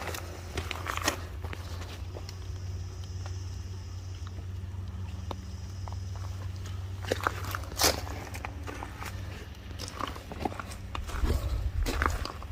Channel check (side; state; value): both; identical; correlation 1.00